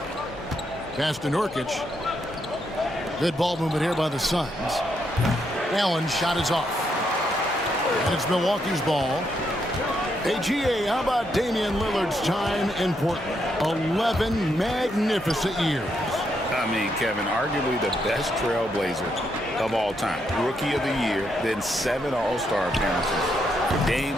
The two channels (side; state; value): both; normal; correlation 0.78